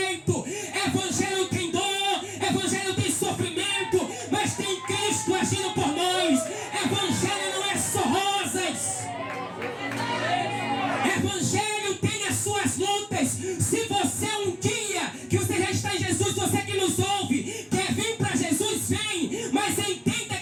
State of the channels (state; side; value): identical; both; correlation 1.00